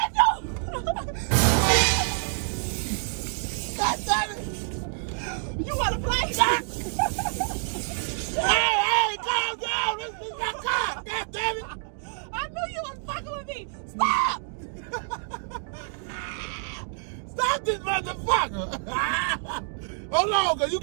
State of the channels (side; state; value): left; silent; 57 dB below the other